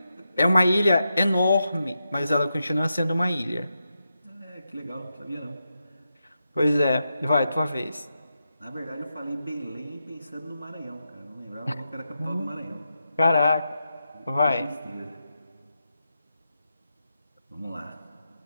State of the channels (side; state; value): both; inverted; correlation -0.87